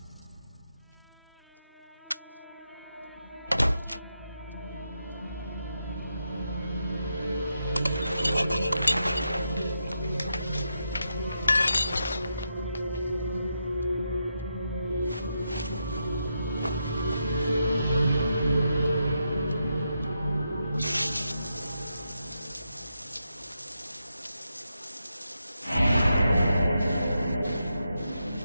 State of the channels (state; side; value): inverted; both; correlation -0.84